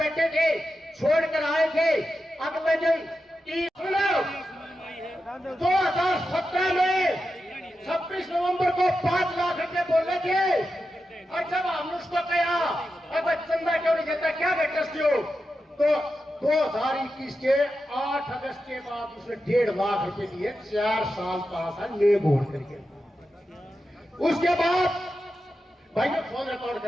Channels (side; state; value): both; normal; correlation 0.89